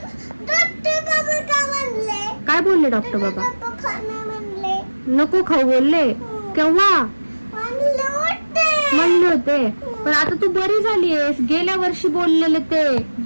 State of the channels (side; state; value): both; inverted; correlation -1.00